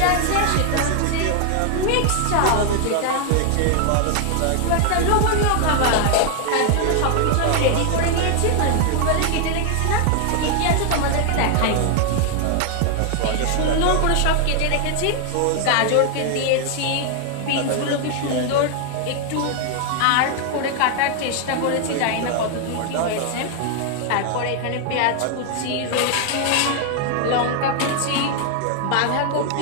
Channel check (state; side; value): different; both; correlation 0.00